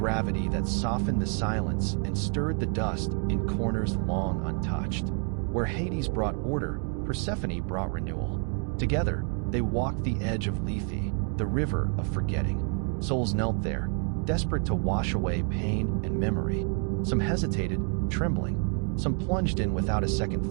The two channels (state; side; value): quieter; left; 39.8 dB